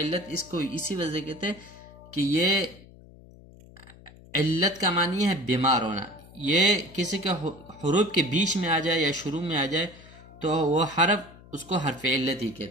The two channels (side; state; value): left; noise; hum, 21 dB below the sound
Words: اس کو اسی وجہ کہتے ہیں کہ یہ علت کا معنی ہے بیمار ہونا، یہ کسی کے حروف کے بیچ میں آ جائے یا شروع میں آ جائے تو وہ حرف اس کو حرف علت ہی